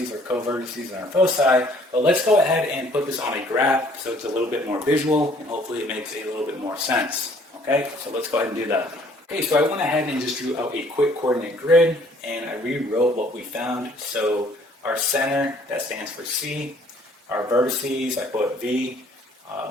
our co-vertices, and our foci. But let's go ahead and put this on a graph so it's a little bit more visual, and hopefully it makes a little bit more sense. Okay, so let's go ahead and do that. Okay, so I went ahead and just drew out a quick coordinate grid, and I rewrote what we found. So our center, that stands for C. Our vertices, I put V.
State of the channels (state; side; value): normal; both; correlation 0.59